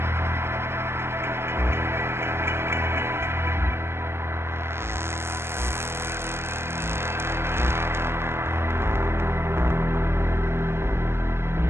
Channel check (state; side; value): late; left; 0.12 ms